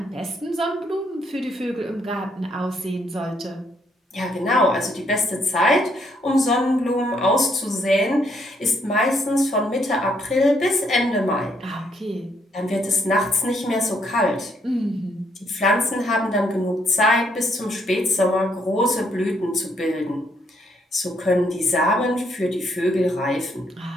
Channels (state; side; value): normal; both; correlation 0.72